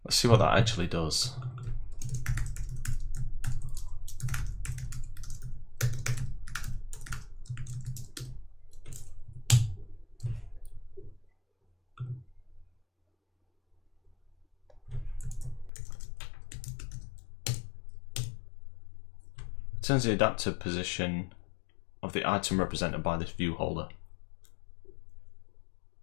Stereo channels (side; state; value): right; drops out; at 15.7 s